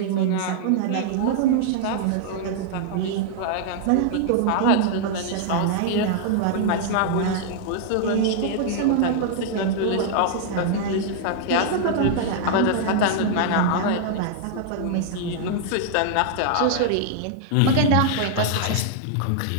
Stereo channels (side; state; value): both; different; correlation -0.01